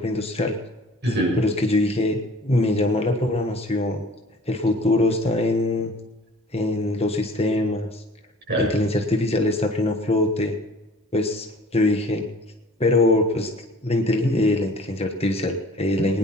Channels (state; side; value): normal; both; correlation 0.48